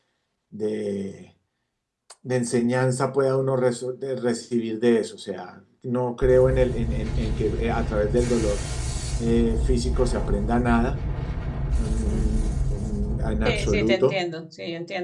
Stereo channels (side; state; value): both; identical; correlation 1.00